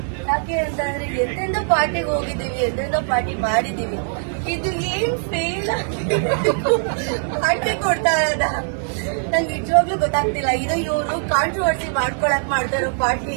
ಯಾಕೆ ಅಂತಂದ್ರೆ ಎಂತೆಂದೋ ಪಾರ್ಟಿಗೆ ಹೋಗಿದ್ದೀವಿ, ಎಂತೆಂದೋ ಪಾರ್ಟಿ ಮಾಡಿದೀವಿ, ಇದು ಏನ್ ಫೇಲ್ ಪಾರ್ಟಿ ಕೊಡ್ತಾ ಇರೋದ ನಂಗೆ ನಿಜವಾಗ್ಲೂ ಗೊತ್ತಾಗ್ತಿಲ್ಲ. ಇದು ಇವರು ಕಾಂಟ್ರವರ್ಸಿ ಮಾಡ್ಕೊಳಕ್ ಮಾಡ್ತಾರೋ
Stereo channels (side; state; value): left; silent; 65 dB below the other